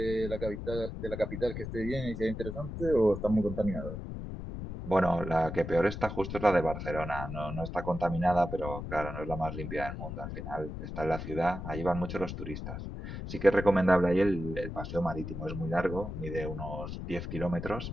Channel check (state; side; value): noise; left; rumble, 7 dB below the sound